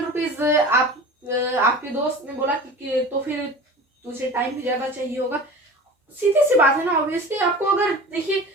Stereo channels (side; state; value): both; normal; correlation 0.37